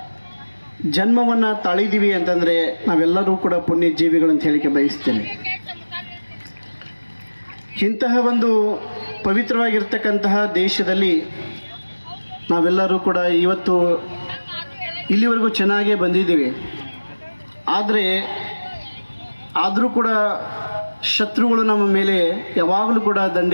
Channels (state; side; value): inverted; both; correlation -1.00